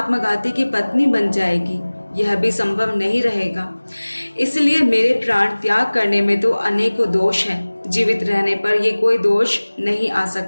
की पत्नी बन जाएगी। यह भी संभव नहीं रहेगा। इसलिए मेरे प्राण त्याग करने में तो अनेकों दोष हैं। जीवित रहने पर ये कोई दोष नहीं आ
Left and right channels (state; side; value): inverted; both; correlation -1.00